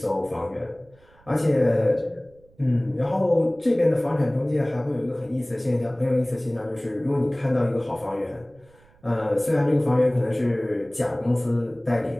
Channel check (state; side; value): noise; right; rumble, 30 dB below the sound